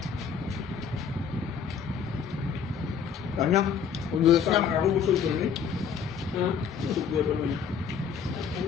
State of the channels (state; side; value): quieter; right; 7.0 dB